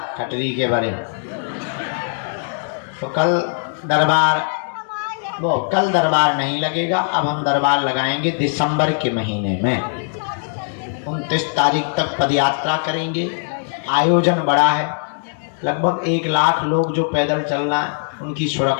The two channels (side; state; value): right; silent; digital silence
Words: कटरी के बारे। तो कल दरबार नहीं लगेगा। अब हम दरबार लगाएंगे दिसंबर के महीने में। 29 तारीख तक पदयात्रा करेंगे। आयोजन बड़ा है, लगभग 1 लाख लोग जो पैदल चलना है, उनकी